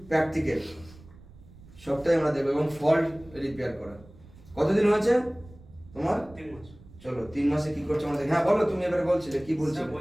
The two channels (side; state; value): right; noise; rumble, 22 dB below the sound